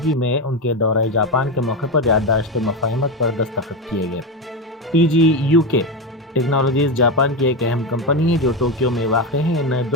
میں ان کے دورہ جاپان کے موقع پر یادداشت مفاہمت پر دستخط کیے گئے۔ TGU کے ٹیکنالوجیز جاپان کی ایک اہم کمپنی ہے جو ٹوکیو میں واقع ہے۔ ان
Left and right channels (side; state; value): both; normal; correlation 0.14